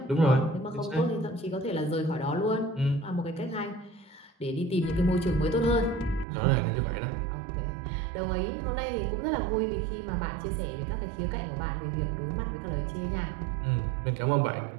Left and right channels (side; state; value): left; drops out; at 6.2 s